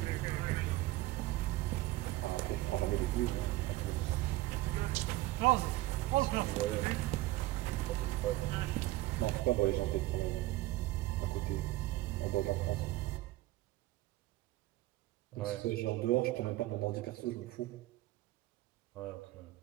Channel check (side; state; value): left; quieter; 17.8 dB